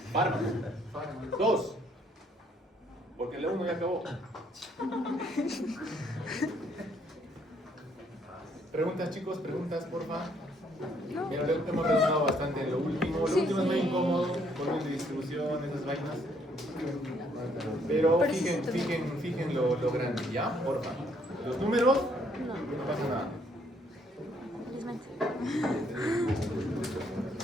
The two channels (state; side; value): normal; both; correlation 0.68